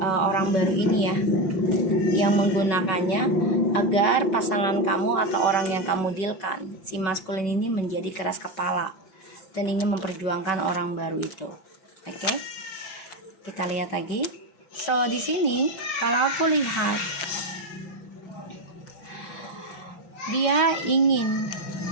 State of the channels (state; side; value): late; right; 5.3 ms